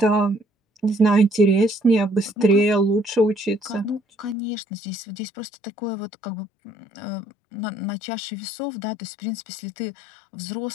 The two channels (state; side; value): drops out; right; at 4.4 s